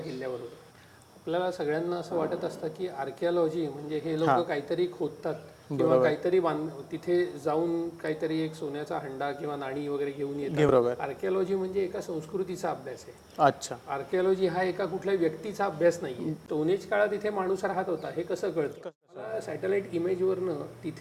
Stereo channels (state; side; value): identical; both; correlation 1.00